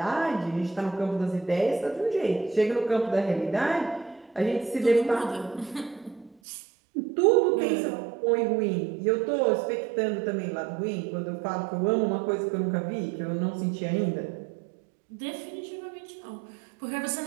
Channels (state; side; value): drops out; left; at 6.4 s